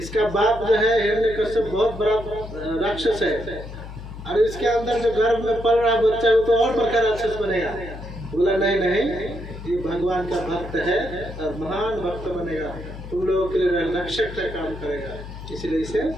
बाप जो है हिरण्यकश्यप बहुत बड़ा राक्षस है, और इसके अंदर जो गर्भ में पल रहा बच्चा है वो तो और बड़ा राक्षस बनेगा। बोला नहीं नहीं, ये भगवान का भक्त है और महान भक्त बनेगा, तुम लोगों के लिए रक्षक का काम करेगा, इसलिए इसे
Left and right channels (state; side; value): noise; left; hum, 12 dB below the sound